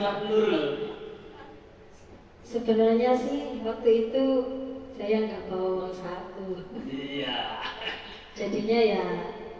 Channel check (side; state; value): both; identical; correlation 1.00